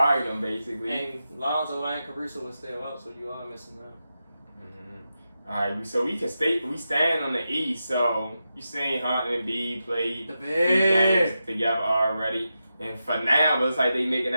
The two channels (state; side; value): inverted; both; correlation -0.89